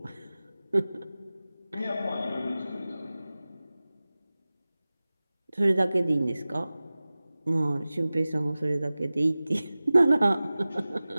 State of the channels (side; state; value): both; inverted; correlation -0.97